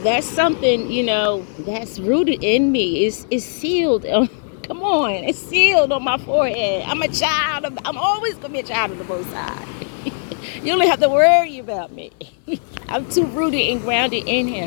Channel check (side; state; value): right; silent; digital silence